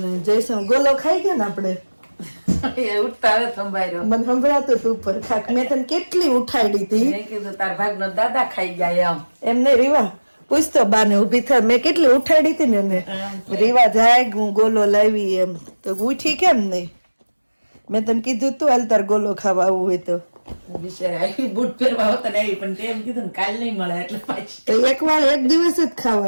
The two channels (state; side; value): inverted; both; correlation -1.00